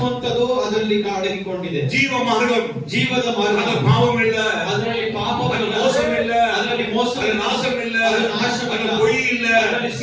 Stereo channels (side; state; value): both; identical; correlation 1.00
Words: ಅದರಲ್ಲಿ ಅಡಗಿಕೊಂಡಿದೆ. ஜீவ மார்க்கம், ಜೀವದ ಮಾರ್ಗ. அது பாவம் இல்ல, ಅದರಲ್ಲಿ அது ಪಾಪವಿಲ್ಲ, மோசம் இல்ல, ಅದರಲ್ಲಿ ಮೋಸ அது ಇಲ್ಲ, நாசம் இல்ல, அது ನಾಶವಿಲ್ಲ, அது பொய் இல்ல, ಅದರಲ್ಲಿ